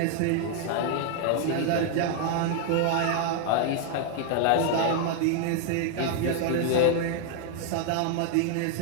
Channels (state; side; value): different; both; correlation 0.00